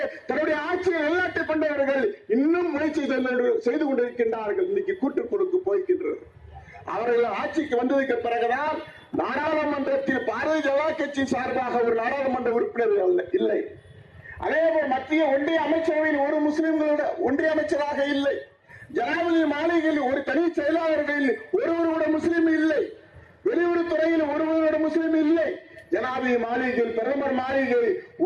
தன்னுடைய ஆட்சியை நிலைநாட்டி கொண்டவர்கள் இன்னும் முயற்சி செய்து கொண்டிருக்கின்றார்கள். இன்னைக்கு கூட்டுக்குழுக்கு போய்கின்றது. அவர்கள் ஆட்சிக்கு வந்ததுக்கு பிறகுதான் நாடாளுமன்றத்தில் பாரதிய ஜனதா கட்சி சார்பாக ஒரு நாடாளுமன்ற உறுப்பினர் இல்லை. அதேபோல் மத்திய ஒன்றிய அமைச்சரவையில் ஒரு முஸ்லிம்களோட ஒன்றிய அமைச்சராக இல்லை. ஜனாதிபதி மாளிகையில் ஒரு தனி செயலாளர்களில் ஒருவரோட முஸ்லிம் இல்லை. வெளியுறவுத்துறையில் ஒருவரோட முஸ்லிம் இல்லை. ஜனாதிபதி மாளிகையில், பிரதமர் மாளிகை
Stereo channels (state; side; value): identical; both; correlation 1.00